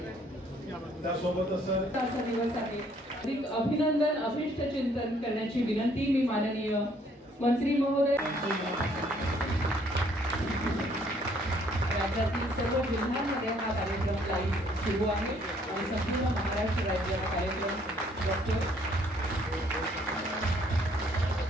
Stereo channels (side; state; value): both; normal; correlation 0.64